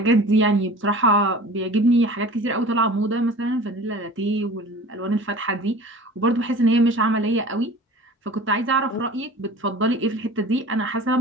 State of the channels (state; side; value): normal; both; correlation 0.41